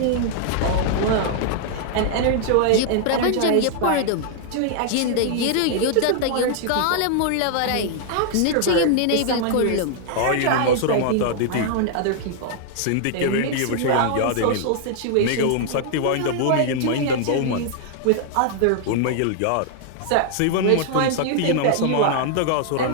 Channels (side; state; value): both; different; correlation -0.01